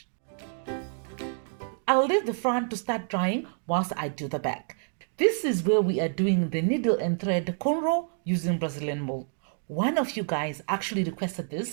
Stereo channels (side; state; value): left; silent; 59 dB below the other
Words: I'll leave the front to start drying whilst I do the back. This is where we are doing the needle and thread cornrow using Brazilian wool. One of you guys actually requested